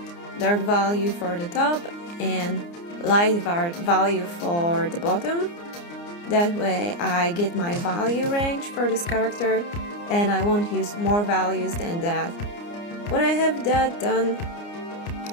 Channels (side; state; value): right; late; 29 ms